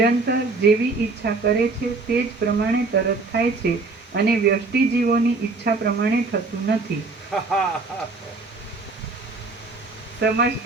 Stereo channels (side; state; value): left; quieter; 3.7 dB